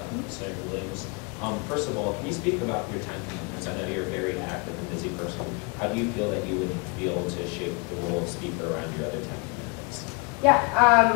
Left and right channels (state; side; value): quieter; right; 31.4 dB